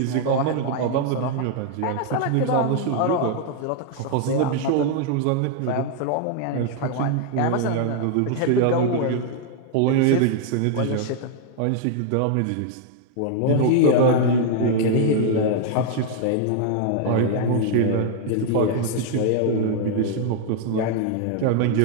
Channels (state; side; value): different; both; correlation 0.00